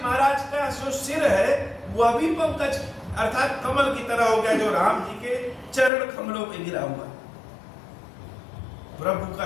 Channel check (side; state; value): right; drops out; at 5.9 s